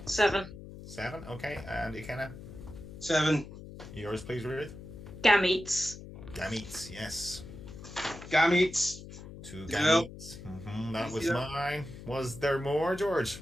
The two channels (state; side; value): noise; left; hum, 13 dB below the sound